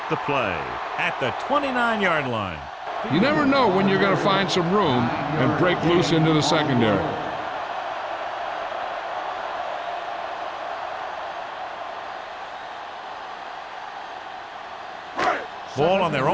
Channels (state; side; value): identical; both; correlation 1.00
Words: the play at the 29-yard line. You never know when you're going to find some room and break loose into the secondary. Ball on their